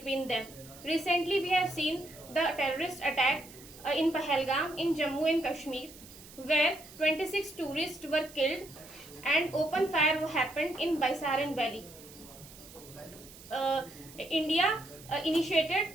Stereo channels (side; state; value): right; noise; hiss, 19 dB below the sound